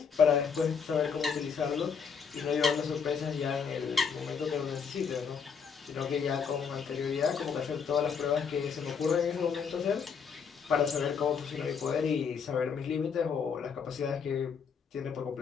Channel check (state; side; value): quieter; right; 6.4 dB